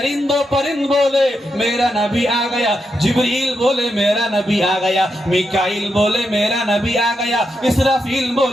परिंद बोले मेरा नबी आ गया, जिब्रील बोले मेरा नबी आ गया, मिकाईल बोले मेरा नबी आ गया, इसराफील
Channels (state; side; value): normal; both; correlation 0.84